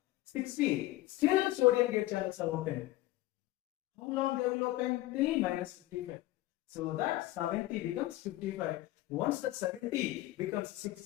60. Still sodium gate channels are open. How long they will open? Till minus 55. So that 70 becomes 55. Once the 70 becomes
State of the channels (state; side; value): quieter; right; 17.0 dB